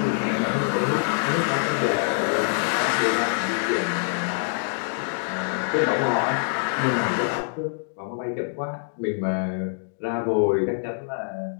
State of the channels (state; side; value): silent; right; digital silence